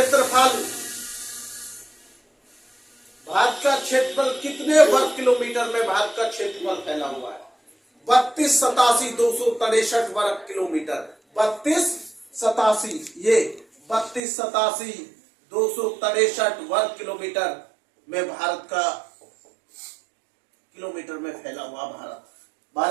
क्षेत्रफल कितने वर्ग किलोमीटर में भारत का क्षेत्रफल फैला हुआ है? 3287,263 वर्ग किलोमीटर। 3287,263 वर्ग किलोमीटर में भारत का किलोमीटर में फैला हुआ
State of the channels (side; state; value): left; drops out; at 14.2 s